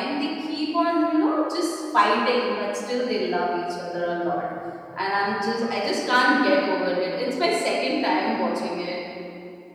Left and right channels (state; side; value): identical; both; correlation 1.00